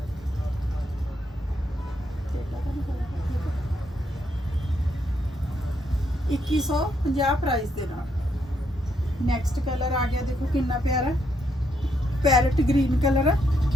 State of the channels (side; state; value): both; normal; correlation 0.76